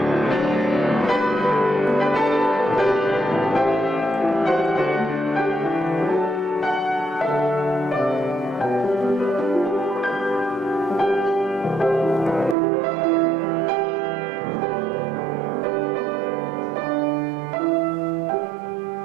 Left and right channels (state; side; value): drops out; left; at 12.6 s